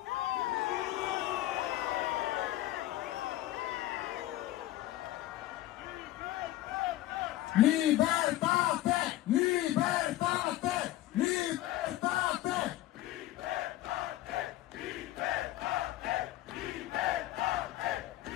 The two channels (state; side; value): quieter; right; 15.2 dB